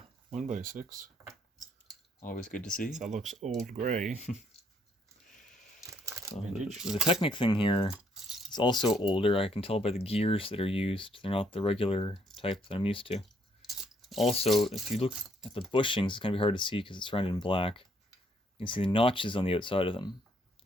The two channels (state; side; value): normal; both; correlation 0.69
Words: 1x6. Always good to see. That looks old gray. So the Technic thing here is also older. I can tell by the gears that are used. They're not the regular type that I'm used to. Also, if you look at the bushings, it's going to be hard to see because it's surrounded in black. You can see the notches on the outside of them.